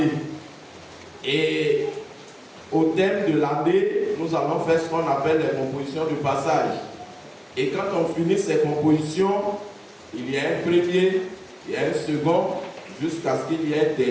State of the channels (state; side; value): identical; both; correlation 1.00